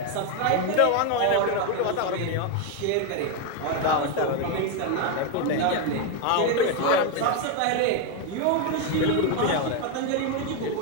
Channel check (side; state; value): both; different; correlation 0.02